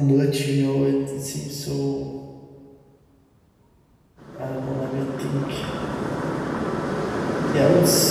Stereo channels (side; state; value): both; identical; correlation 1.00